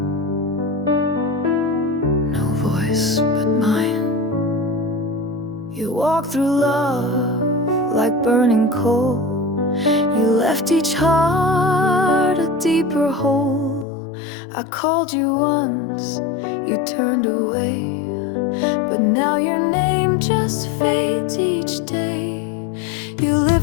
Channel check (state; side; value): drops out; right; at 13.9 s